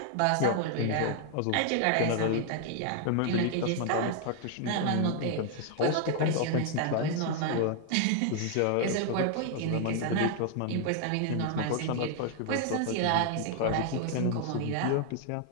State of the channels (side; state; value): both; different; correlation 0.00